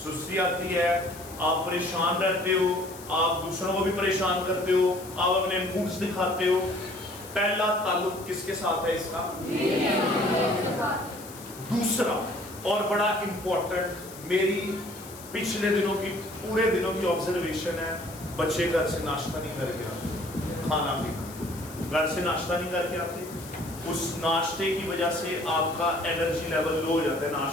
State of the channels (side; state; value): left; noise; hiss, 16 dB below the sound